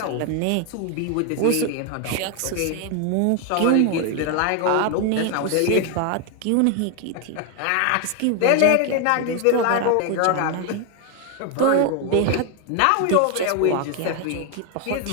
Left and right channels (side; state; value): both; different; correlation 0.01